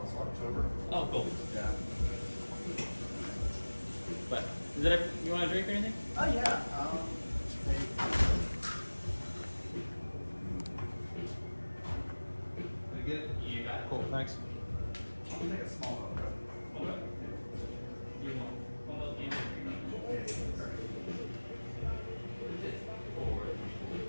so October. Oh, cool. Yeah. But is that you want a drink or anything? Oh, yeah. Did I get it? You got it. Cool, thanks. I'll take a small one. Okay. You want one of those games? Forward.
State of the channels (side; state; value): both; inverted; correlation -1.00